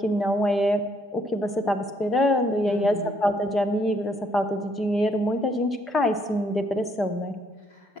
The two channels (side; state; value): both; normal; correlation 0.70